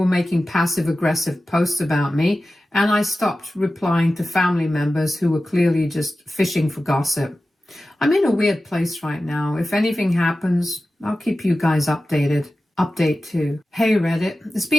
making passive-aggressive posts about me, and I stopped replying to family members who were clearly just fishing for gossip. I'm in a weird place right now. If anything happens, I'll keep you guys updated. Update 2. Hey Reddit, it's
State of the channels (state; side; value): normal; both; correlation 0.95